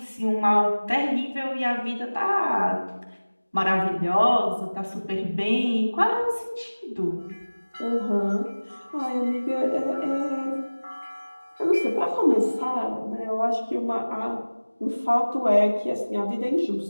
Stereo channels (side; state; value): both; inverted; correlation -1.00